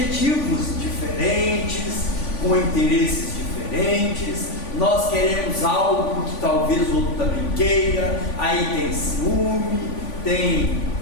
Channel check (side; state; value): right; late; 3.5 ms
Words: diferentes, com interesses diferentes. Nós queremos algo que talvez o outro também queira, aí tem ciúme, tem